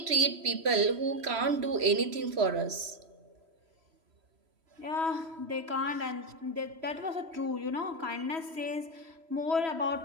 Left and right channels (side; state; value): left; late; 3.1 ms